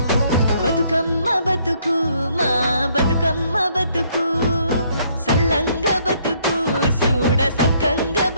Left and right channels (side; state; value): both; inverted; correlation -0.67